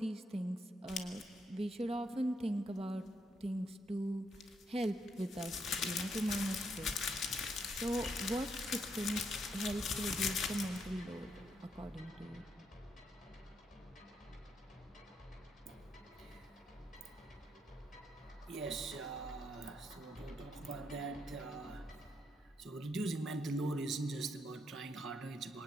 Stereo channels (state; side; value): normal; both; correlation 0.77